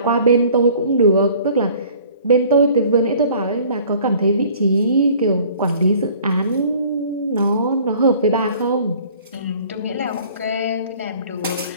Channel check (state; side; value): inverted; both; correlation -0.52